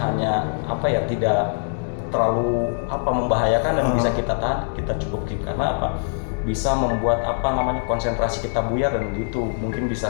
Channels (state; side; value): silent; right; digital silence